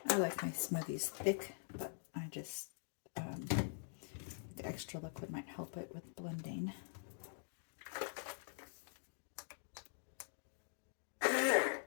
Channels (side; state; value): right; silent; digital silence